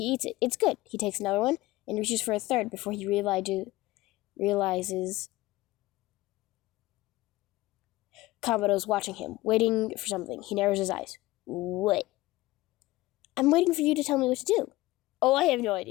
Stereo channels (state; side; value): quieter; right; 18.6 dB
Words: eats it. It's good. He takes another one and reaches for a third before he realizes Kamado's watching him, waiting for something. He narrows his eyes. What? I'm waiting for you to tell me what to do. Oh, I have no